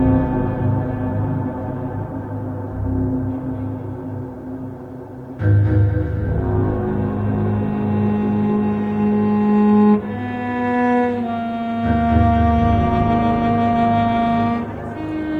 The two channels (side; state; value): both; identical; correlation 1.00